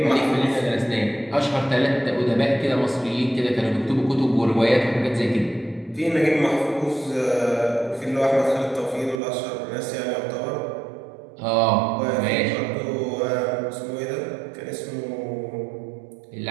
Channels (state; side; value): drops out; left; at 9.2 s